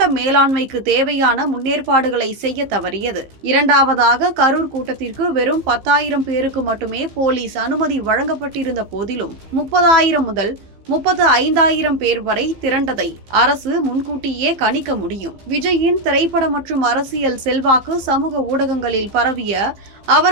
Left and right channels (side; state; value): left; late; 15 ms